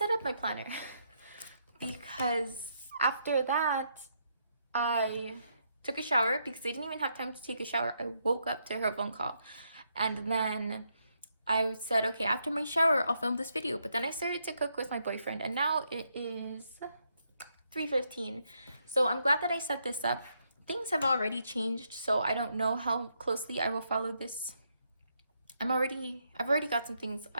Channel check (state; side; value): inverted; both; correlation -0.77